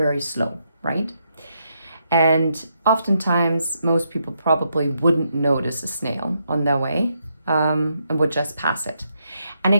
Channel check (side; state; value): both; inverted; correlation -0.79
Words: slow, right? And oftentimes, most people probably wouldn't notice a snail on their way and would just pass it. And